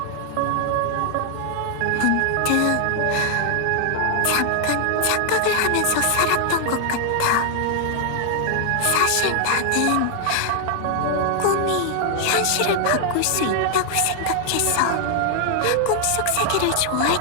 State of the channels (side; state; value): both; different; correlation 0.00